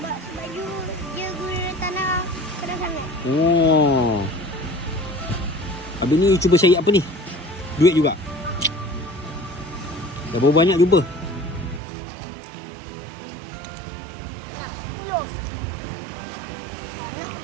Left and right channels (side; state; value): left; drops out; at 11.8 s